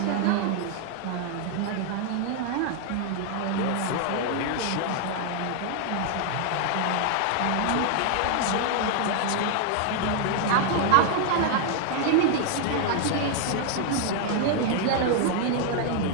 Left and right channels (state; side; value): different; both; correlation 0.00